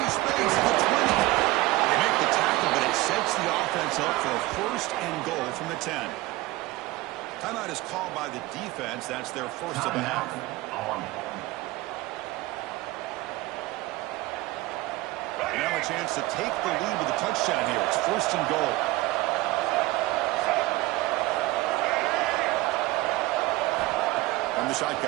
space at the 20. They make the tackle, but it sets the offense up for a 1st and goal from the 10. Timeout is called by the defense. That's their first of the half. And now a chance to take the lead with a touchdown here. It's 1st and goal. From the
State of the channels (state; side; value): quieter; left; 19.4 dB